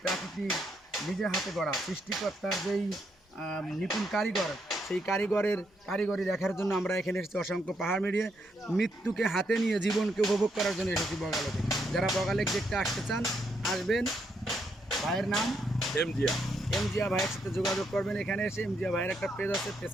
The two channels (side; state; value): both; normal; correlation 0.77